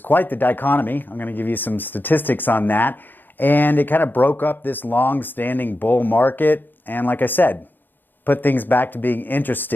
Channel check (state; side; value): late; right; 0.093 ms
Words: the dichotomy. I'm going to give you some statistics on that. And it kind of broke up this long-standing bull market. And like I said, put things back to being